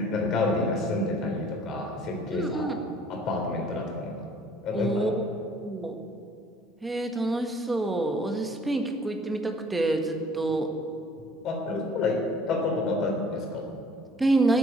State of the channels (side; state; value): both; normal; correlation 0.54